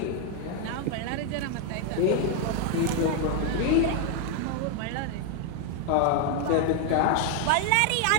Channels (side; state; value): both; different; correlation 0.00